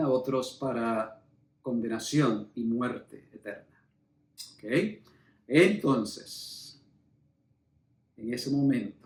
otros para condenación y muerte eterna. ¿Ok? Entonces, en ese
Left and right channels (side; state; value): both; identical; correlation 1.00